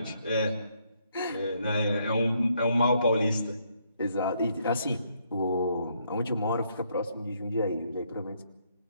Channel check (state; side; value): inverted; both; correlation -0.72